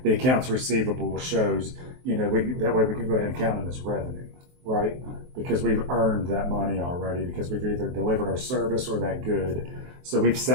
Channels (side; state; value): left; late; 23 ms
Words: the accounts receivable shows, that way we can go ahead and count it as revenue, right? Because we've earned that money already, because we've either delivered our service or that good. So we've